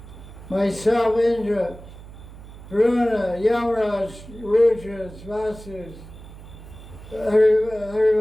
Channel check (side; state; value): right; noise; hum, 16 dB below the sound